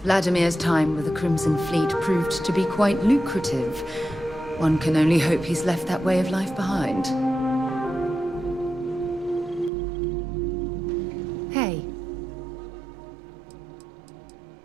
Vladimir's time with the Crimson Fleet proved to be quite lucrative. One can only hope he's left that way of life behind. Hey.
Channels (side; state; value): left; drops out; at 9.7 s